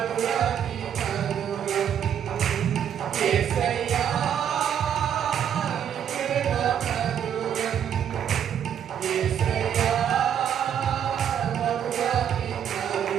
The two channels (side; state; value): left; quieter; 9.0 dB